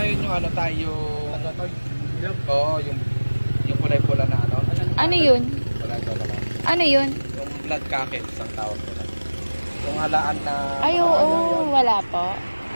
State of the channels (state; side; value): inverted; both; correlation -1.00